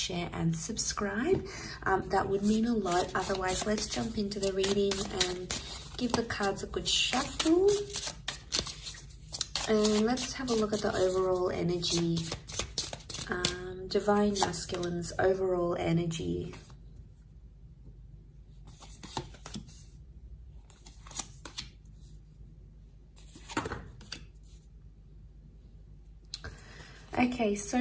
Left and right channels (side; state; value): both; identical; correlation 1.00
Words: and subscribe. That would mean a lot. Otherwise, let's jump into the reading and give the cards a good shuffle. And let's have a look at the overall energy. Divine Masculine's overall energy. Okay,